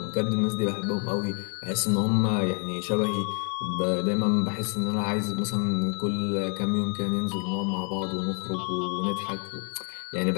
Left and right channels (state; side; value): quieter; right; 38.5 dB